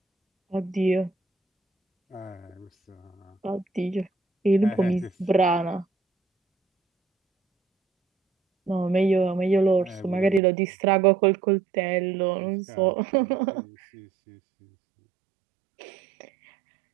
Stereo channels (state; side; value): drops out; left; at 10.4 s